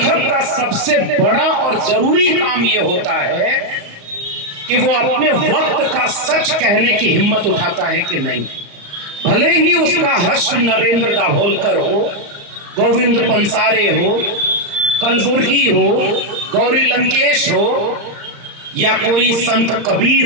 का सबसे बड़ा और जरूरी काम यह होता है कि वो अपने वक्त का सच कहने की हिम्मत उठाता है कि नहीं। भले ही उसका हर्ष नरेंद्र दाभोलकर हो, गोविंद पंसारे हो, कलबुर्गी हो, गौरी लंकेश हो या कोई संत कबीर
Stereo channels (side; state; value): left; late; 35 ms